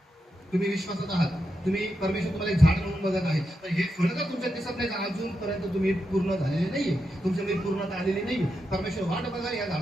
तुम्ही विश्वासात आहात, तुम्ही परमेश्वर तुम्हाला एक झाड म्हणून बघत आहे, तर हे फळ जर तुमच्या दिसत नाही तर अजूनपर्यंत तुम्ही पूर्ण झालेले नाहीये, तुमच्यामध्ये पूर्णता आलेली नाही. परमेश्वर वाट बघा या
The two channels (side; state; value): both; normal; correlation 0.86